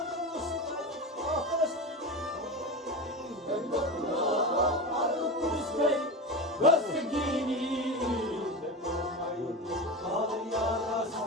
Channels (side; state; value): both; normal; correlation 0.23